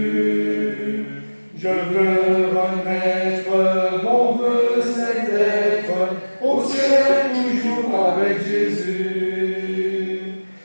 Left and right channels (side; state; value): both; inverted; correlation -1.00